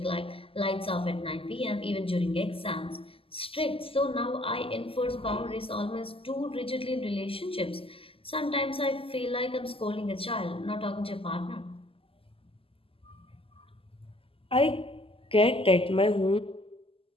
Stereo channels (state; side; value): late; right; 0.26 ms